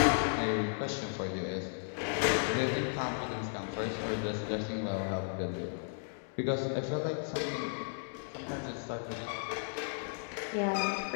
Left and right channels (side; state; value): right; silent; digital silence